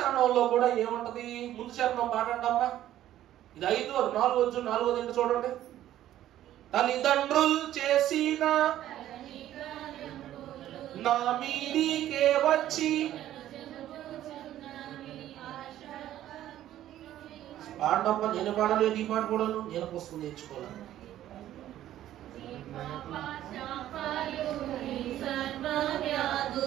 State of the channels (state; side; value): quieter; left; 12.7 dB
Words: కూడా ఏముంటది? ముందు చరణం పాడండమ్మా. ఇది 5, 4, 4 చూడండి. తల్లిదండ్రులు చేసిన నా మీదికే వచ్చి పాడమ్మా. నేను పాడలేదు, ఈ మాట కూడా నేను పుస్తకం నేర్చుకోవాలి.